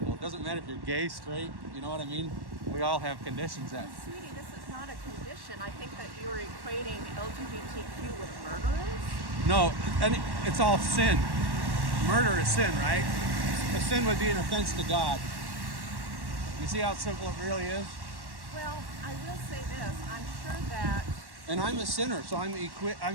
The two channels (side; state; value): left; late; 1.1 ms